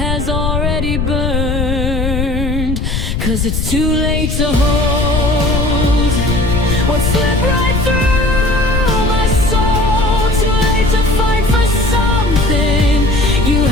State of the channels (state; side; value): noise; left; rumble, 1 dB below the sound